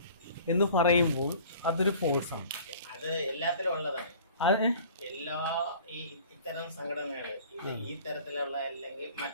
എന്ന് പറയുമ്പോൾ അതൊരു ഫോഴ്സാണ്. അത് എല്ലാത്തിലും ഉള്ളതാണ്. എല്ലാ ഇത്തരം സംഘടനകൾ ഈ തരത്തിലുള്ള അല്ലെങ്കിൽ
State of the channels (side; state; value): both; inverted; correlation -0.47